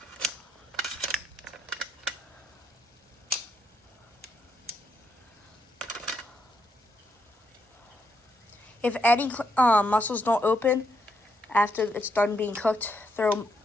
If any mussels don't open after it's done being cooked, throw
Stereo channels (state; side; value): normal; both; correlation 0.78